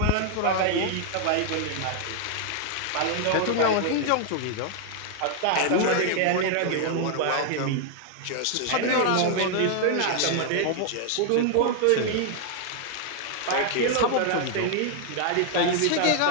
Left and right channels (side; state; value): both; different; correlation 0.00